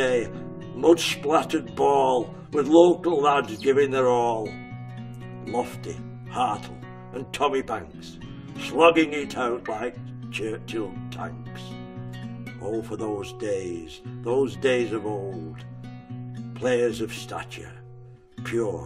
mud-splattered ball, with local lads giving their all. Lofty, Hartle and Tommy Banks, slugging it out like Churchill tanks. Oh, for those days of old, players of stature,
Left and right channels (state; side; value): identical; both; correlation 1.00